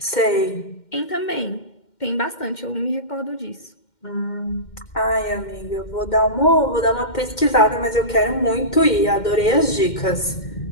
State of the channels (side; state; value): right; late; 2.1 ms